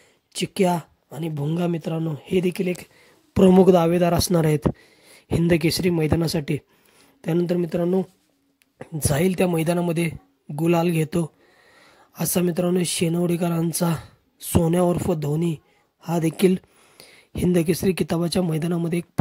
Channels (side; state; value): both; identical; correlation 1.00